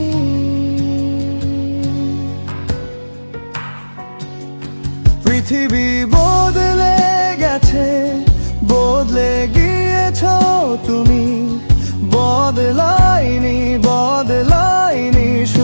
পৃথিবী বদলে গেছে, বদলে গিয়েছো তুমি, বদলাইনি বদলাইনি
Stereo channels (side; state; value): both; inverted; correlation -1.00